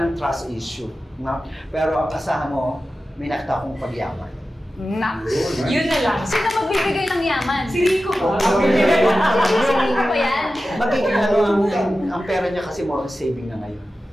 trust issue. No? Pero ang asahan mo, may nakita akong pagyaman. Yun na lang. Sino magbibigay ng yaman? Si Rico ba? Si Rico ba yan? Magiging ang pera niya kasi more on saving na ngayon.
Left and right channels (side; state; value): both; normal; correlation 0.94